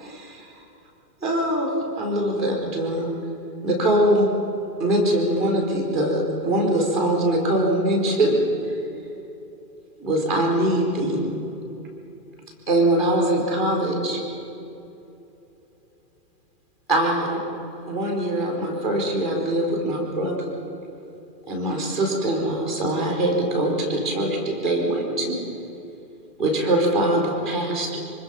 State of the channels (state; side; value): late; right; 2.4 ms